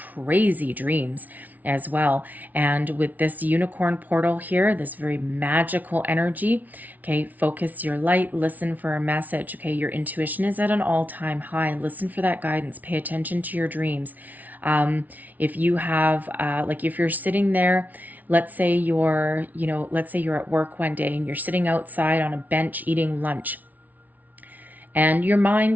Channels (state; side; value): late; left; 0.077 ms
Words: dreams as well. And with this unicorn portal here, this very magical energy, okay, focus your light, listen for a message. Okay, your intuition is at an all-time high. Listen for that guidance. Pay attention to your dreams. If you have, if you're sitting there, let's say you're at work one day and you're sitting outside on a bench eating lunch, and your